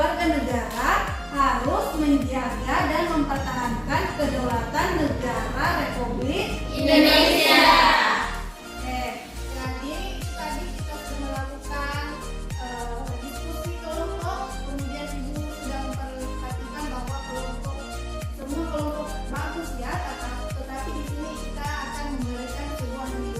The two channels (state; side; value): identical; both; correlation 1.00